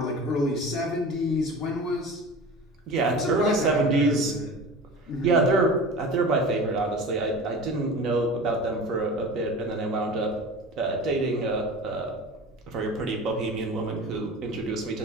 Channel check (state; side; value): normal; both; correlation 0.35